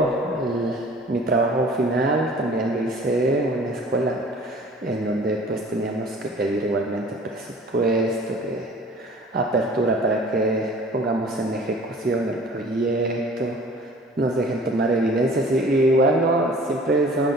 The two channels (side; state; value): both; normal; correlation 0.48